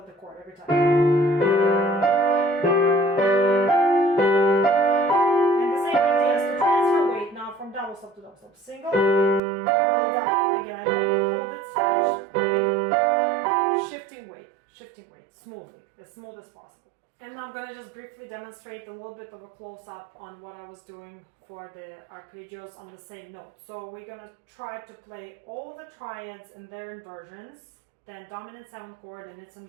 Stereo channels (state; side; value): drops out; left; at 9.4 s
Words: the chord every time. And the same idea is to transfer weight now from double stop to double stop. Single, double, double. Again, I don't hold it, stretch, shifting weight smoothly, as smooth as possible. And now I'm going to just briefly demonstrate a little bit of a close-up on what I was doing for the arpeggios on the same note. So we're going to try to play all the triads and their inversions, then dominant 7th chord and its